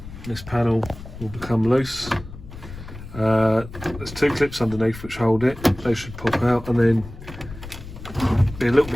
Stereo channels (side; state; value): left; noise; rumble, 14 dB below the sound